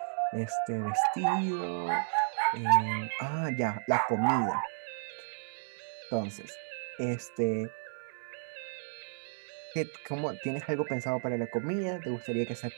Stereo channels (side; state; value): left; silent; digital silence